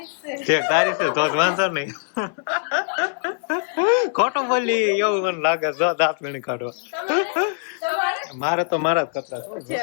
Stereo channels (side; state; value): right; silent; 61 dB below the other